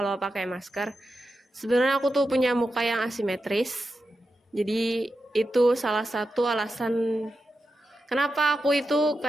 pakai masker. Sebenarnya aku tuh punya muka yang asimetris. Jadi itu salah satu alasan kenapa aku itu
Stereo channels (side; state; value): both; normal; correlation 0.89